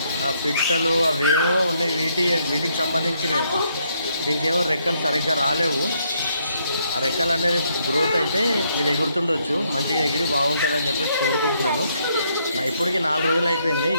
ఆ పిట్టలు అవేమో ఉన్నాయి, వీటికి సంబంధించినవి. దీనికి ఏమో రెక్కలు సరిగ్గా రాలేవు. ఆ రెక్కలు అనేది గ్రోత్ అయితే ఇది ఎగురుతుండొచ్చు, మంచిగా ఎగిరి బాగుంటుందని చెప్పేసి కోరుకుంటున్నాను. ఇప్పటికి 4 రోజులు అయిపోయింది,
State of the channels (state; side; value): inverted; both; correlation -0.73